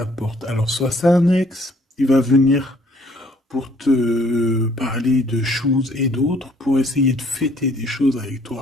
porte. Alors, soit c'est un ex, il va venir pour te parler de choses et d'autres, pour essayer de fêter des choses avec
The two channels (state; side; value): normal; both; correlation 0.62